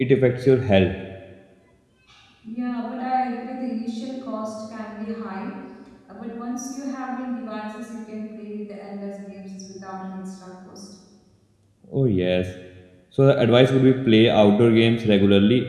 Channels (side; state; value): both; identical; correlation 1.00